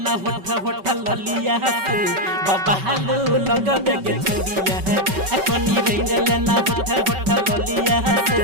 होठ ललिया से बाबा हालू लगबे के छोड़िया कनी रहने लेना होठ ललिया से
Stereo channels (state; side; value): late; left; 5.2 ms